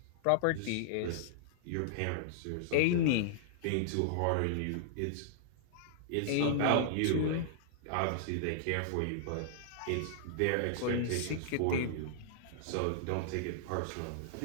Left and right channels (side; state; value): both; different; correlation -0.01